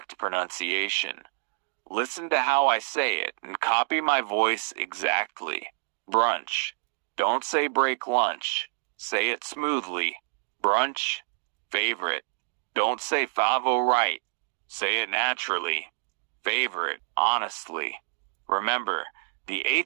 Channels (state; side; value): silent; left; digital silence